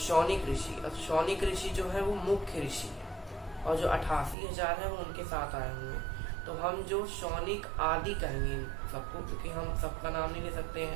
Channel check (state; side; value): drops out; left; at 4.4 s